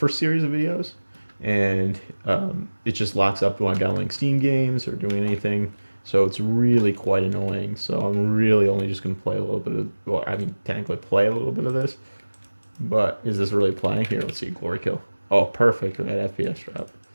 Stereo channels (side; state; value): both; inverted; correlation -1.00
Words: series of videos, and it just locks up when I'm downloading Steam games or doing anything. So it's really quite annoying. So I'm really only just going to play a little bit of, well, I mean, technically play a little bit of this. But is this really playing? Here, let's see, Glory Kill. Oh, perfect with that FPS drop.